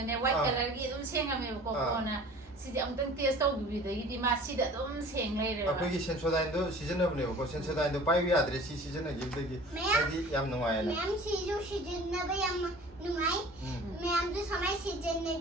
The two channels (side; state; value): both; normal; correlation 0.45